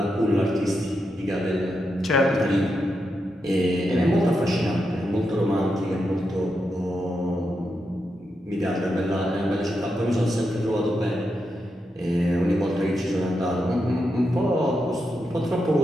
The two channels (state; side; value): normal; both; correlation 0.85